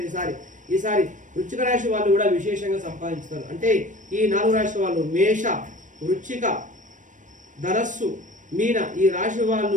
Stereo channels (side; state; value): left; late; 0.37 ms